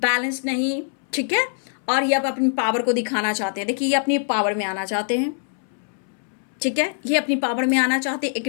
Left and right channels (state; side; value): silent; right; 63 dB below the other